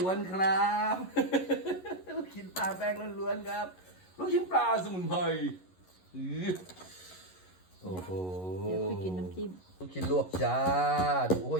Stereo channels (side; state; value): right; late; 11 ms